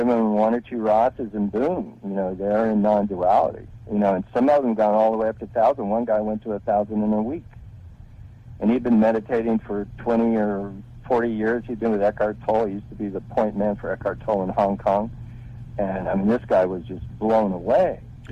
them 1 or 2 RASAs, and boom, they're in non-duality. And some of them gone all the way up to 1,000. One guy went to 1,000 in a week, and he'd been meditating for 20 or 40 years. He'd been with Eckhart Tolle. He used to be the point man for Eckhart Tolle in Hong Kong. And, I mean, this guy was just blown away,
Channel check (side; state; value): both; identical; correlation 1.00